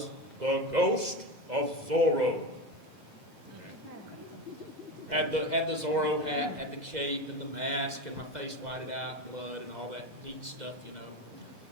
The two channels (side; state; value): left; late; 2.0 ms